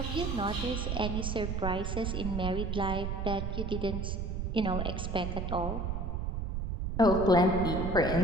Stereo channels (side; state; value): right; noise; rumble, 2 dB below the sound